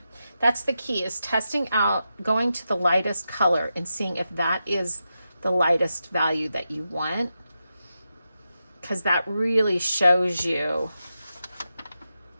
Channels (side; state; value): both; inverted; correlation -0.89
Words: That's the key, is testing out, going to the lightest color and seeing if that is the lightest value that you want, because that really shows you.